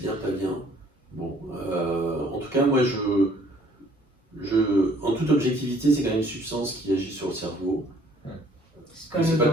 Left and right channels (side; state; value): both; normal; correlation 0.59